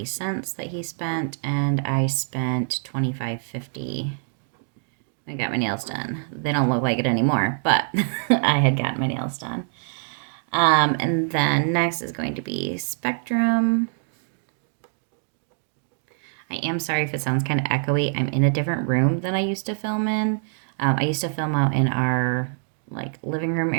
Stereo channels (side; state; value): left; silent; digital silence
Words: that he spent, and I spent $25.50. I got my nails done. They don't look like it anymore, but I had gotten my nails done. And then next is going to be Spectrum. I am sorry if it sounds kind of echoey. I'm in a different room than I used to film in. I used to film out in our living room